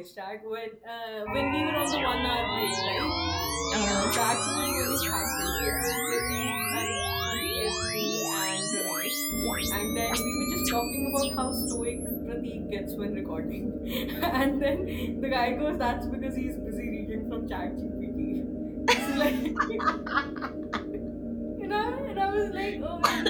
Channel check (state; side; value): identical; both; correlation 1.00